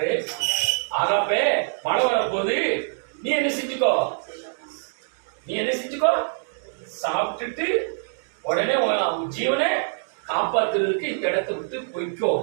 ஆகாப்பே, மழை வரப்போகுது, நீ என்ன செஞ்சுக்கோ, சாப்பிட்டுட்டு உடனே ஜீவனை காப்பாத்துறதுக்கு இந்த இடத்தை விட்டு போய்க்கோ,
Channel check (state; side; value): silent; left; digital silence